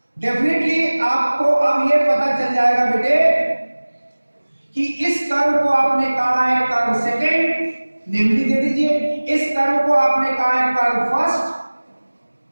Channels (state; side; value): inverted; both; correlation -1.00